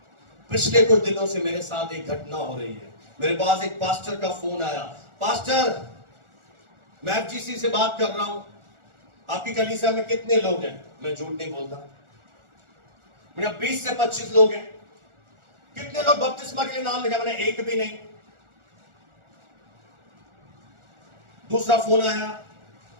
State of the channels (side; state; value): left; late; 1.4 ms